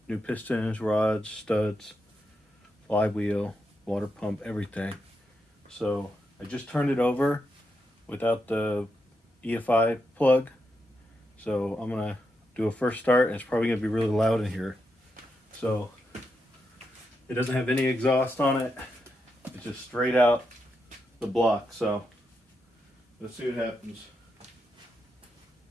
New pistons, rods, studs, flywheel, water pump, everything. So I just turned it over without the EFI plug. So I'm going to do a first start, and it's probably going to be really loud in here. So it doesn't have any exhaust on it. It's just straight out the block. So let's see what happens.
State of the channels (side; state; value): both; normal; correlation 0.84